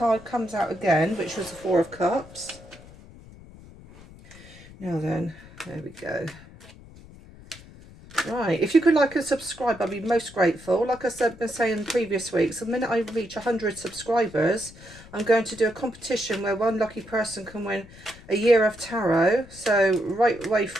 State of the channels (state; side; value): noise; left; rumble, 20 dB below the sound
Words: comes out again, which was the Four of Cups. Now then, there we go. Right, if you could like and subscribe, I'd be most grateful. Like I said, been saying in previous weeks, the minute I reach 100 subscribers, I'm going to do a competition where one lucky person can win a year of tarot. So right way